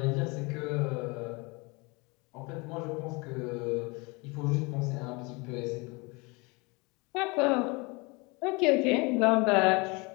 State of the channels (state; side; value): quieter; right; 27.6 dB